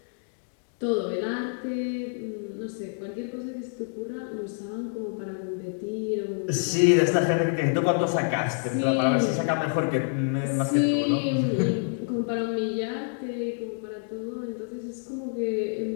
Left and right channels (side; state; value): right; silent; 60 dB below the other